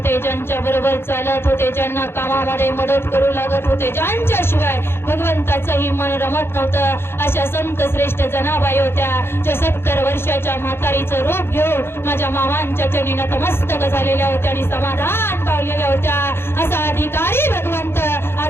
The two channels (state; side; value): late; right; 0.11 ms